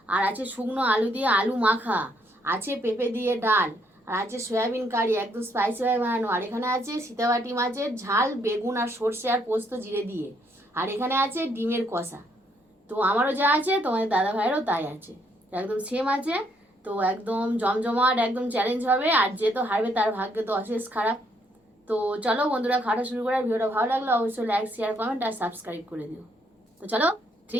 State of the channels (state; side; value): normal; both; correlation 0.71